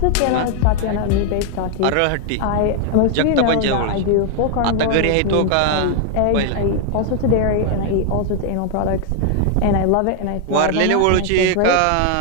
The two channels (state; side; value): different; both; correlation 0.00